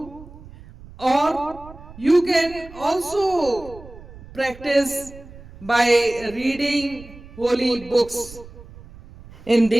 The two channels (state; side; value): noise; right; rumble, 18 dB below the sound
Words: or you can also practice by reading holy books. In